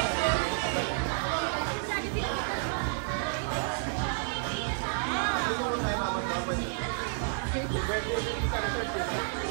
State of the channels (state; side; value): silent; left; 57 dB below the other